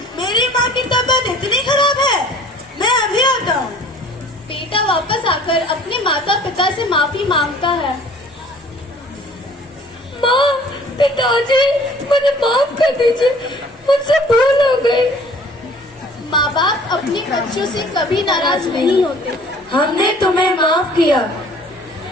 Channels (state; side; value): normal; both; correlation 0.51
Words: मेरी माँ की तबीयत इतनी खराब है? मैं अभी आता हूँ। बेटा वापस आकर अपने माता पिता से माफी मांगता है। माँ, पिताजी, मुझे माफ कर दीजिए, मुझसे भूल हो गई। माँ बाप अपने बच्चों से कभी नाराज नहीं होते। हमने तुम्हें माफ किया।